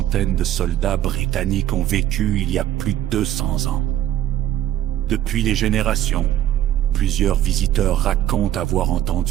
de soldats britanniques ont vécu il y a plus de 200 ans. Depuis les générations, plusieurs visiteurs racontent avoir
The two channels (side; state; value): left; quieter; 12.1 dB